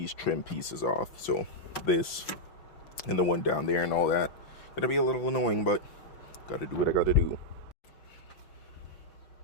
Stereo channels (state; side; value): late; right; 5.8 ms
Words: trim pieces off. So this and the one down there and all that, gonna be a little annoying, but gotta do what I gotta do.